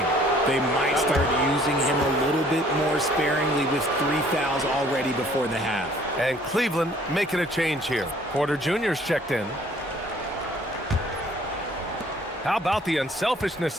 They might start using him a little bit more sparingly with 3 fouls already before the half. And Cleveland making a change here. Porter Jr.'s checked in. How about the unselfishness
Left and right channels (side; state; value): both; normal; correlation 0.58